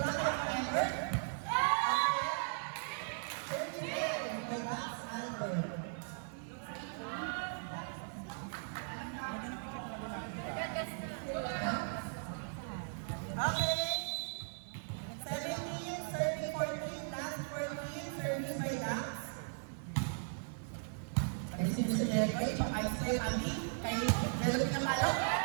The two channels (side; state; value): left; silent; 53 dB below the other